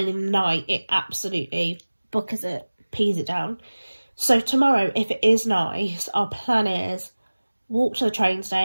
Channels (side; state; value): both; inverted; correlation -1.00